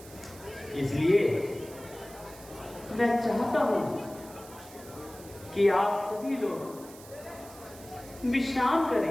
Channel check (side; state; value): right; noise; hiss, 19 dB below the sound